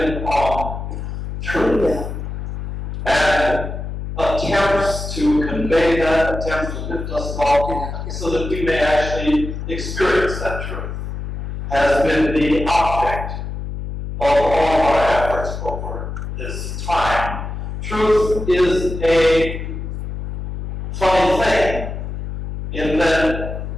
on truth. And attempts to convey that, attempts to lift us all so that we may actually experience that truth, has been the object of all our efforts over this time. Truth is a funny thing in that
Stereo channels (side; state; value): left; noise; hum, 6 dB below the sound